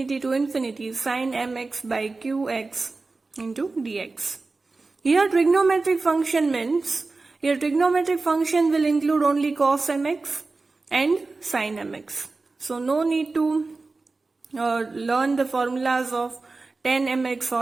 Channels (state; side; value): quieter; left; 3.7 dB